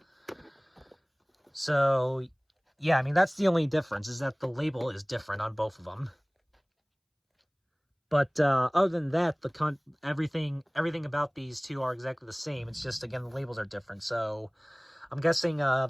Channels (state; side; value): identical; both; correlation 1.00